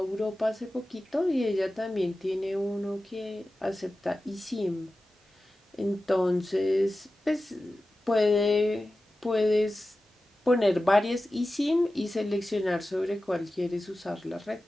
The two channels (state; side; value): normal; both; correlation 0.94